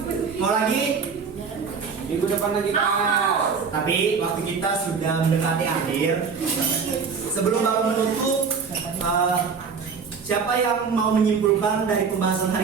Mau lagi? Minggu depan lagi Pak. Tapi waktu kita sudah mendekati akhir. Sebelum Bapak menutup, siapa yang mau menyimpulkan dari pembahasan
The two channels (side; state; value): left; quieter; 5.7 dB